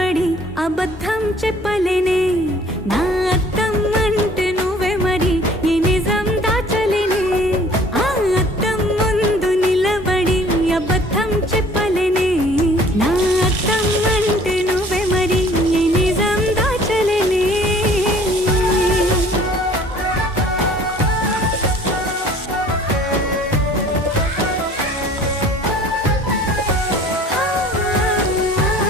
అబద్ధం చెప్పలేనే నా అద్దం అంటే నువ్వే మరి ఈ నిజం దాచలేనే ఆ అద్దం ముందు నిలబడి అబద్ధం చెప్పలేనే నా అద్దం అంటే నువ్వే మరి ఈ నిజం దాచలేనే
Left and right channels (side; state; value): both; normal; correlation 0.52